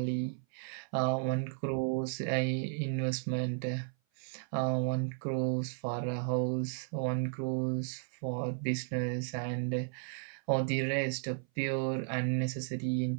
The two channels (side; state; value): left; silent; 55 dB below the other